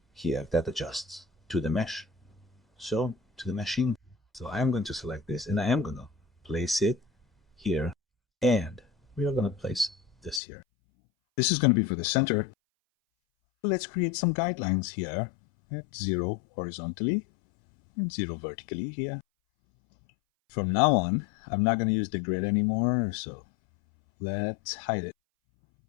here, that adjusts to the mesh. So, to the meshing. So I am going to select this and I am going to place it here. And we are going to place this here. This is going to be for the center. Let's create some guidelines here at 0 horizontally and 0 vertically here. From now on, I'm not going to use the grid anymore, so let's hide it.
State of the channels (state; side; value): drops out; right; at 10.4 s